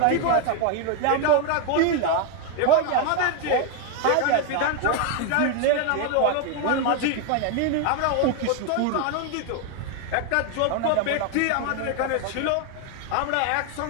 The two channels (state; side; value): different; both; correlation 0.01